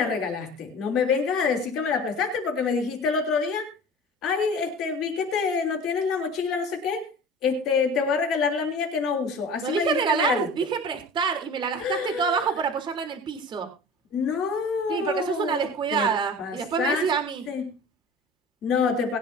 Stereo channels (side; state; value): both; normal; correlation 0.38